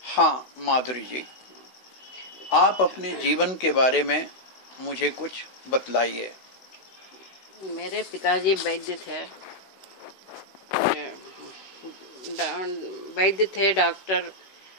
हाँ माधुरी जी, आप अपने जीवन के बारे में मुझे कुछ बतलाइए। मेरे पिताजी वैद्य थे डॉक्टर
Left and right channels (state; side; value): late; right; 16 ms